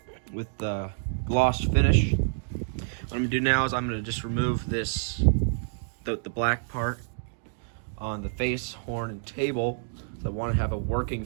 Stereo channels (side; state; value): left; silent; digital silence